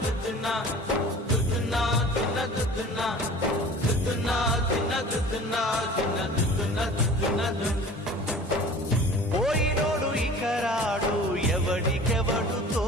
దుద్దున్నా దుద్దున్నా దున్న దుద్దున్నా దుద్దున్నా దిన్న దుద్దున్నా దిన్న దుద్దున్నా దుద్దున్నా పోయినోడు ఇక రాడు ఎవడికెవడు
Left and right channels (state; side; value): normal; both; correlation 0.43